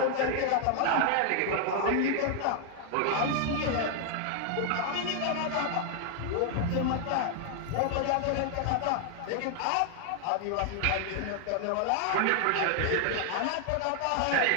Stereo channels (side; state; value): both; different; correlation 0.00